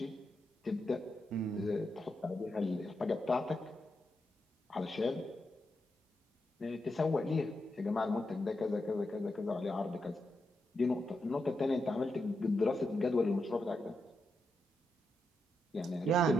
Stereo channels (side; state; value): both; normal; correlation 0.85